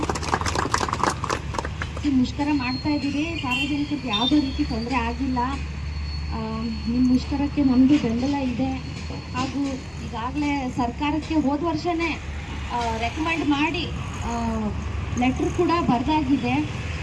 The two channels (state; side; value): identical; both; correlation 1.00